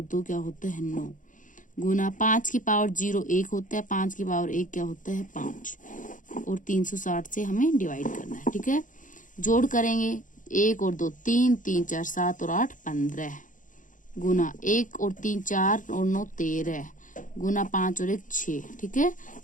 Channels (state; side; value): late; right; 0.38 ms